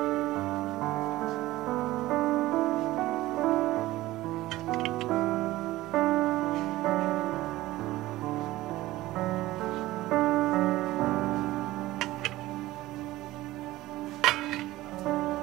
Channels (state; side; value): quieter; left; 17.2 dB